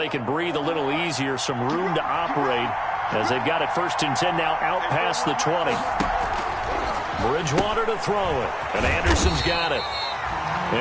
can breathe a little easier, some room to operate as they've got it 1st and 10 now out past the 20. Bridgewater to throw it, and Anderson's got it.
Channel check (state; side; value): identical; both; correlation 1.00